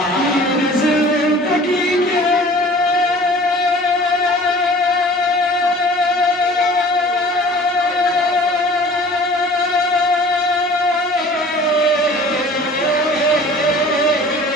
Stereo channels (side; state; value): both; normal; correlation 0.46